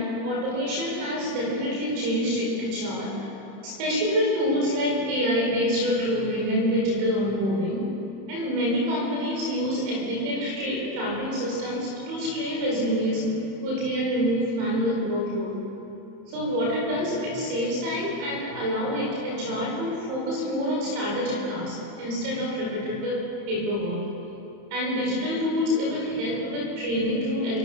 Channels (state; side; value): late; left; 31 ms